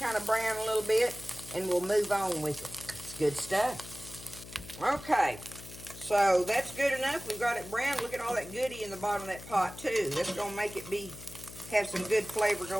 of brown a little bit, and we'll move on with it. It's good stuff. Okay, so that's good enough. We've got it brown. Look at all that goodie in the bottom of that pot too. That's going to make it have some good flavor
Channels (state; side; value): noise; left; hum, 15 dB below the sound